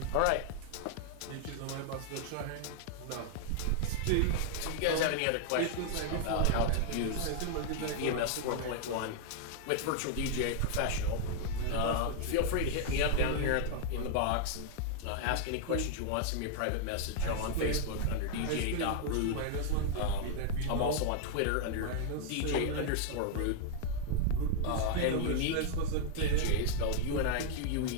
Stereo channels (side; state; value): both; different; correlation -0.01